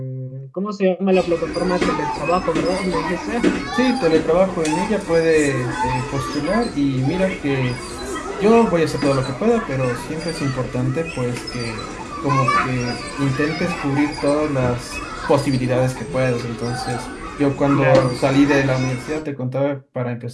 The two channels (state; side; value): identical; both; correlation 1.00